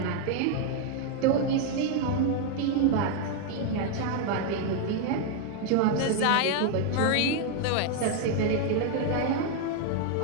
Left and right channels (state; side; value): different; both; correlation 0.00